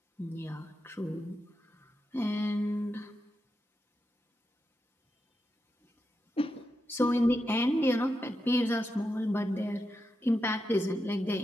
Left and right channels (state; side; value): normal; both; correlation 0.87